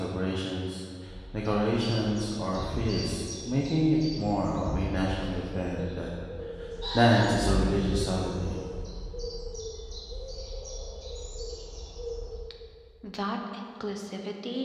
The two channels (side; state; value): both; identical; correlation 1.00